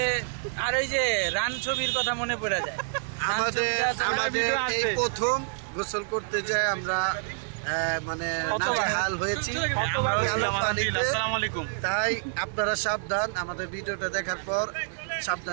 আর ওই যে রান ছবির কথা মনে পড়ে যায়। আমাদের এই প্রথম গোসল করতে যাই আমরা, মানে নাজেহাল হয়েছি পানিতে। তাই আপনারা সাবধান, আমাদের ভিডিওটা দেখার পর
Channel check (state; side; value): silent; left; digital silence